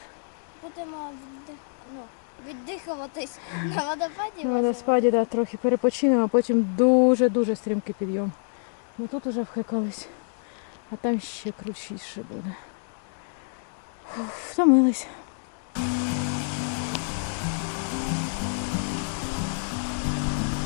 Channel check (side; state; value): right; silent; digital silence